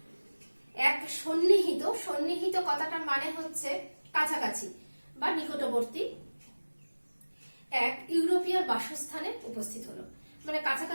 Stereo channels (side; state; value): both; inverted; correlation -1.00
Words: এক সন্নিহিত, সন্নিহিত কথাটার মানে হচ্ছে কাছাকাছি বা নিকটবর্তী, এক ইউরোপীয় বাসস্থানে উপস্থিত হলো, মানে